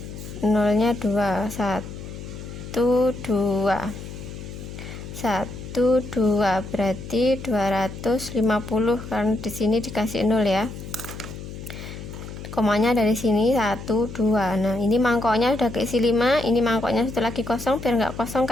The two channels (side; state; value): left; noise; hum, 11 dB below the sound